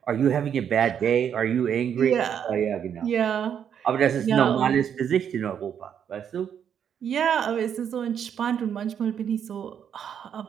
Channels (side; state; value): left; quieter; 8.4 dB